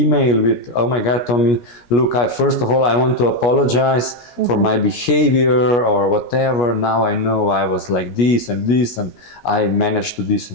with, oh my God, Tommy, look, first of all, I want to apologize for my behavior or whatever. Now I know I was like this, and I managed to this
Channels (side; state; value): right; late; 17 ms